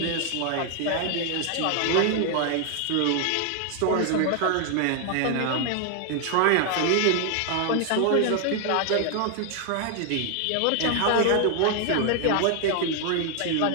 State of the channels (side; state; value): both; different; correlation 0.00